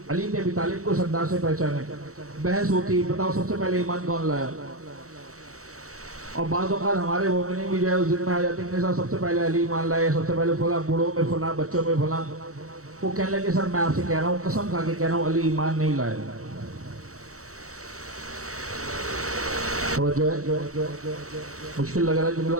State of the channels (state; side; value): late; left; 0.65 ms